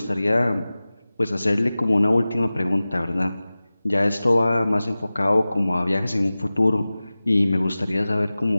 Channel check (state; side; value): inverted; both; correlation -0.97